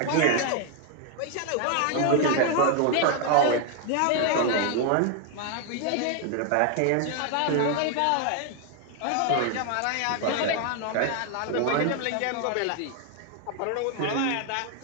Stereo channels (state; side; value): different; both; correlation 0.00